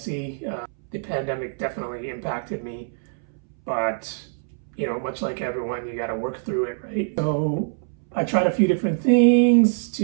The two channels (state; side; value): silent; left; 62 dB below the other